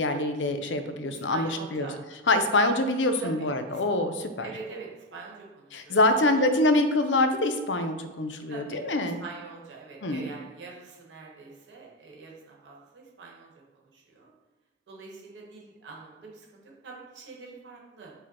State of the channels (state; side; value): normal; both; correlation 0.04